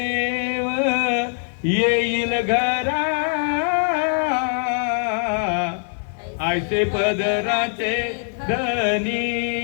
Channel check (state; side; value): silent; right; 64 dB below the other